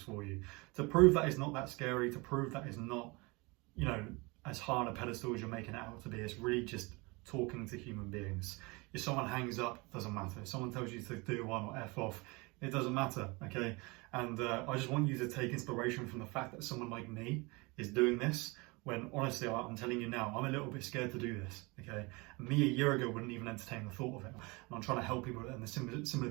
for you to prove that it's not that scary, to prove that it's not, you know, as high on a pedestal as you're making it out to be. It's really just talking to human beings. If someone hangs up, doesn't matter. If someone tells you to do one or F off, it doesn't matter, okay? And I just want you to take inspiration from the fact that someone like me is doing this, when honestly, I'm telling you now, I'm a little bit scared to do this, okay? And me a year ago wouldn't even entertain the thought of it. And I'm trying to help people in a similar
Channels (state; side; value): quieter; left; 26.3 dB